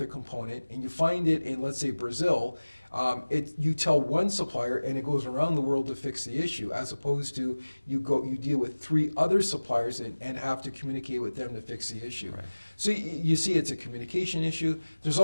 component and you find it in, let's say, Brazil, you tell one supplier and it goes around the world to fix the issue, as opposed to you deal with 3 other suppliers and have to communicate with them to fix the issue. Right. So you see it's a communication issue. There's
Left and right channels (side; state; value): both; inverted; correlation -1.00